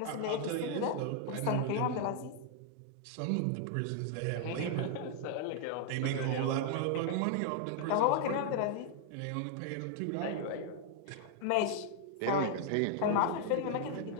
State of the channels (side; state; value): both; different; correlation 0.00